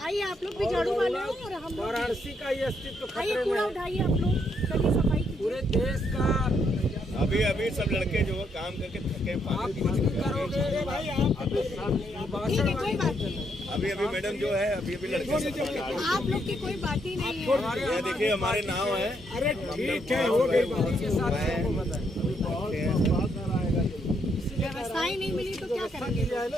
आइए आप लोग भी झाड़ू वाले हो और हम लोग वाराणसी का ये अस्तित्व आइए, खतरे में कूड़ा है। उठाइए आप लोग, चलिए सफाई कीजिए। पूरे देश का अभी सब लड़के जो है काम करके थके आप कुछ भी करोगे भाई, आप ठीक है, कोई बात नहीं, अभी मैडम जो है अभी लड़के आप लोग की कोई बात ही नहीं है। ये देखिए हमारे नाव है। अरे ठीक है, हो गई बात के साथ सबको पता है। व्यवस्थाएं नहीं मिली तो क्या व्यवस्था करेंगे? की जाए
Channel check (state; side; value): normal; both; correlation 0.75